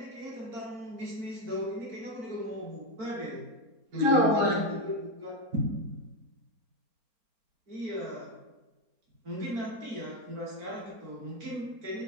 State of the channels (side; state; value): left; late; 4.3 ms